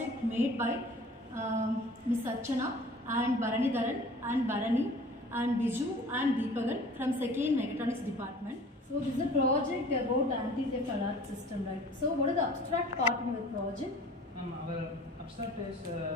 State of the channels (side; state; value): both; normal; correlation 0.46